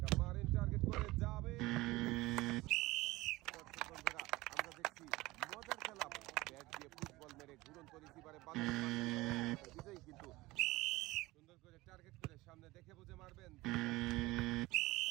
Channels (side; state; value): left; quieter; 19.9 dB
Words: মারেন, টার্গেট করে যাবে। বন্ধুরা আমরা দেখছি মজার খেলা, ব্যাট দিয়ে ফুটবল মেরে ঘুরন্ত রিসিভারে বাঁধাতে পারলেন বিজয়ী, কিন্তু সুন্দর করে টার্গেট করে সামনে দেখে বুঝে মারবেন।